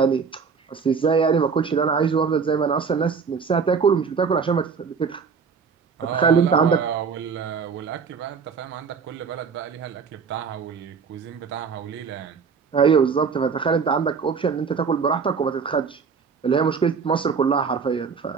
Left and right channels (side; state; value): left; quieter; 5.8 dB